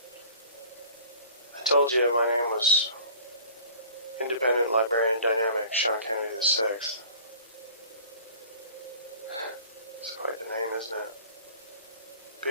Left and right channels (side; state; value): both; inverted; correlation -0.46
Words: I told you my name was Independent Librarian Dynamic Sean Kennedy VI. It's quite the name, isn't it?